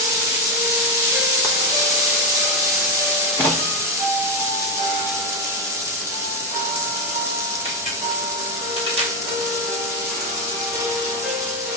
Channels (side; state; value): both; normal; correlation 0.10